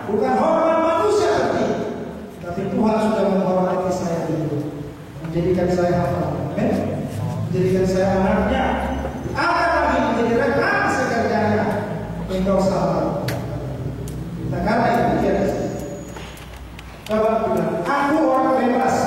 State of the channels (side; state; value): both; identical; correlation 1.00